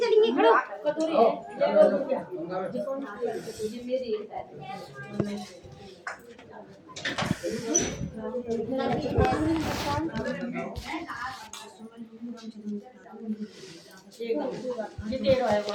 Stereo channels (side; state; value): both; identical; correlation 1.00